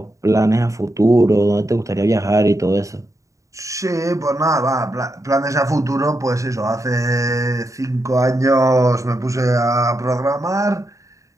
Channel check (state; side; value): late; left; 0.16 ms